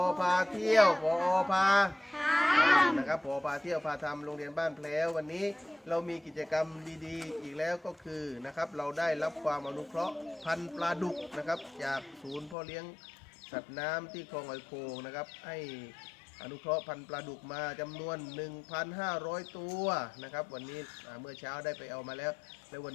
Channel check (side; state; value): right; drops out; at 12.6 s